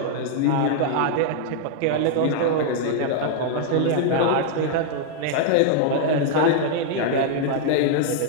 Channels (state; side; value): different; both; correlation -0.01